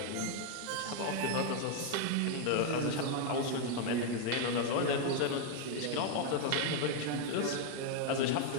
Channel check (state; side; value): different; both; correlation 0.01